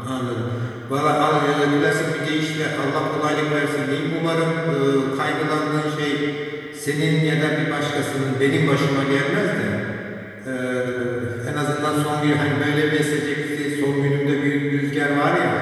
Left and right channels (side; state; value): both; identical; correlation 1.00